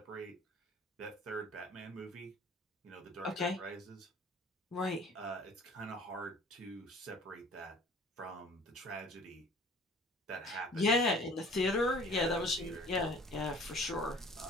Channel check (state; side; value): normal; both; correlation 0.48